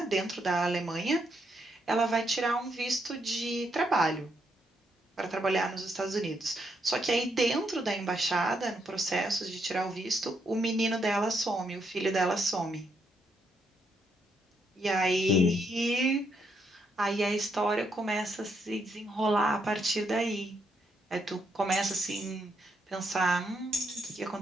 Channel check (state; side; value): normal; both; correlation 0.77